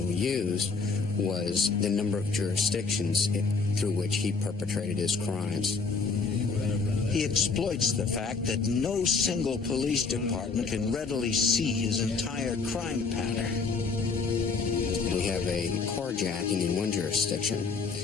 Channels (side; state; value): right; quieter; 4.7 dB